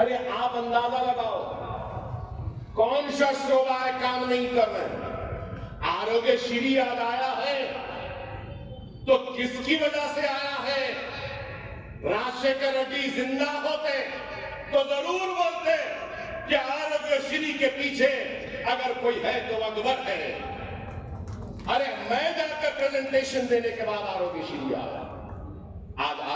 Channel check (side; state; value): both; identical; correlation 1.00